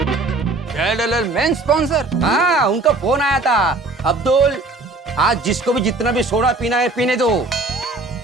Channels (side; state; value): left; quieter; 3.2 dB